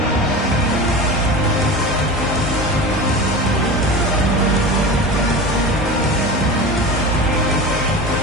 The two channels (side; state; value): both; normal; correlation 0.30